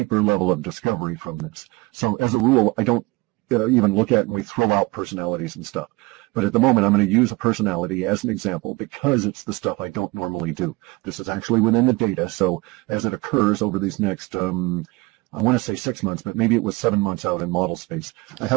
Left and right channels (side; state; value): left; quieter; 24.0 dB